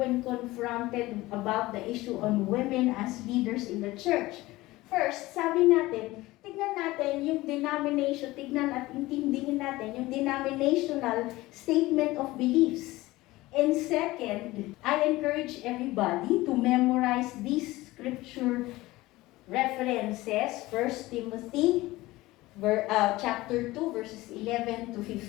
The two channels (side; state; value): right; quieter; 18.9 dB